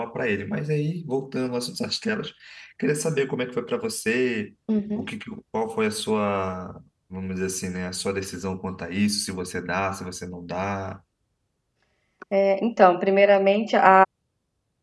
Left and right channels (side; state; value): both; identical; correlation 1.00